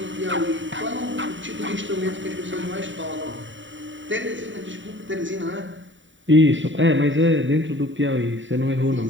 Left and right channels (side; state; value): left; late; 0.55 ms